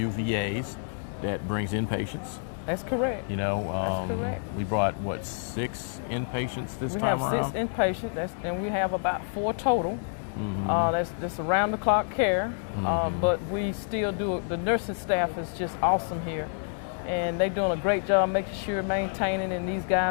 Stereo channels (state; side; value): silent; right; 59 dB below the other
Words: VAs that brings in patients. That's correct. That's correct. We brought 6 inpatients this time around. We have 6 inpatients, and we have about 4 total. That's around the clock care, but we still do. The nursing staff is just awesome here, and they're doing a great job making sure maintaining. And these